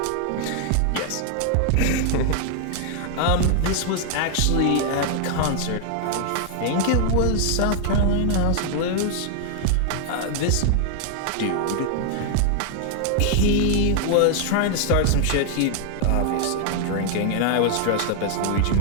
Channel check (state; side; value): different; both; correlation 0.00